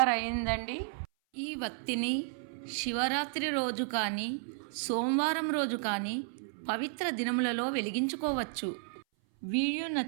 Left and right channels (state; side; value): silent; left; 56 dB below the other